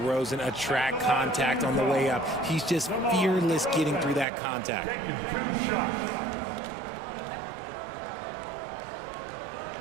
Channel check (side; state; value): left; drops out; at 4.2 s